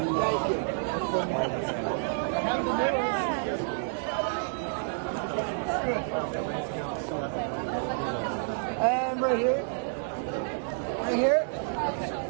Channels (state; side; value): silent; left; 58 dB below the other